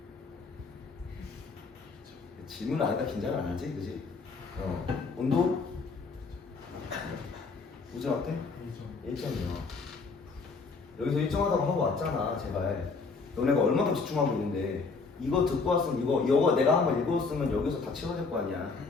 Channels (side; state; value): right; quieter; 4.4 dB